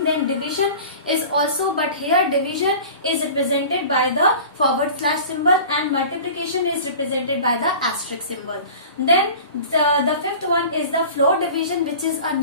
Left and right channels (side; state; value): both; inverted; correlation -0.40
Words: Then division is also, but here division is represented by the forward slash symbol and multiplication is represented by the asterisk symbol. Then the fifth one is the floor division, which is a